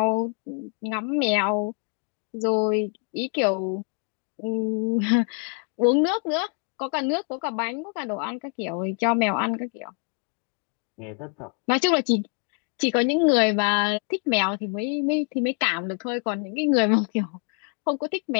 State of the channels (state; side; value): quieter; right; 38.8 dB